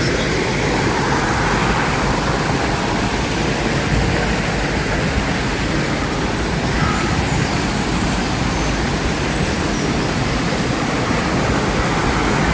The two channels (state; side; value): identical; both; correlation 1.00